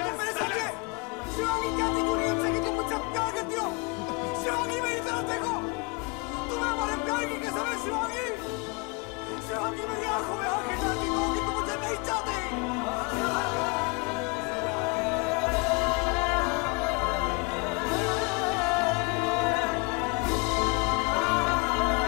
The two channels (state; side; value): quieter; right; 30.1 dB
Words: तुम मेरे साथ ये? शिवांगी, क्या थी पूरी उनसे कि तुम मुझसे प्यार करती हो? शिवांगी, मेरी तरफ देखो! तुम्हें हमारे प्यार की कसम है शिवांगी! शिवांगी, मेरी आंखों में आंखें डालती हो कि तुम मुझे नहीं चाहते!